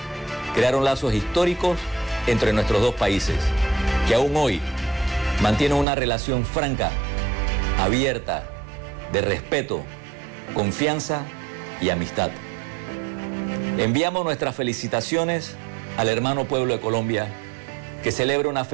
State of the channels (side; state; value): left; drops out; at 5.9 s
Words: crearon lazos históricos entre nuestros dos países, que aún hoy mantienen una relación franca, abierta, de respeto, confianza y amistad. Enviamos nuestras felicitaciones al hermano pueblo de Colombia, que celebra una